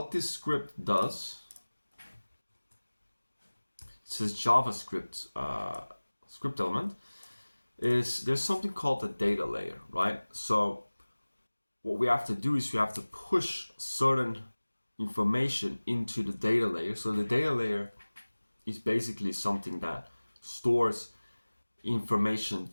this script does, it says JavaScript script element, is there's something called the data layer, right? So what we have to do is we have to push certain information into the data layer. So the data layer is basically something that stores information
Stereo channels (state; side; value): inverted; both; correlation -1.00